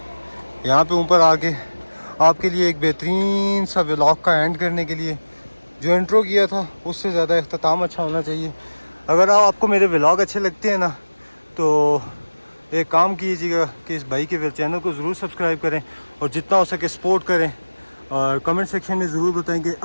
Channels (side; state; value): both; inverted; correlation -1.00